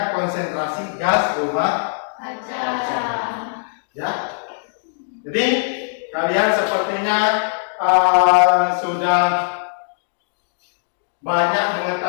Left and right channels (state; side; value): silent; right; digital silence